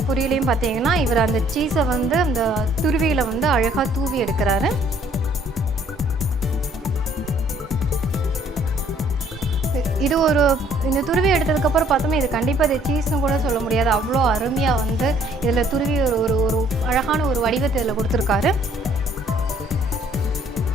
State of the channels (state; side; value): normal; both; correlation 0.61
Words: பொரியலையும் பார்த்தீங்கன்னா இவர் அந்த சீஸை வந்து அந்த துருவியில் வந்து அழகாக தூவி எடுக்கிறாரு. இது இந்த துருவி எடுத்ததுக்கப்புறம் பார்த்தோம்னா இது கண்டிப்பாக இது சீஸ்னு கூட சொல்ல முடியாது. அவ்வளோ அருமையாக வந்து இதில் துருவி ஒரு அழகான ஒரு வடிவத்தை இதில் கொடுத்துருக்காரு.